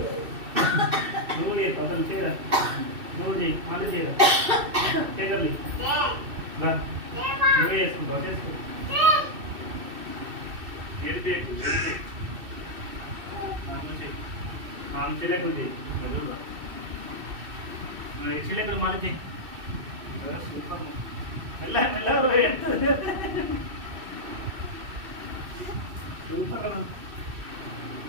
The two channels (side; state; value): left; late; 2.6 ms